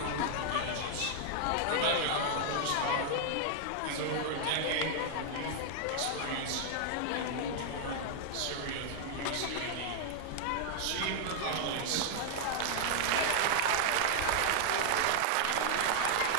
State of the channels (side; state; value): both; different; correlation 0.00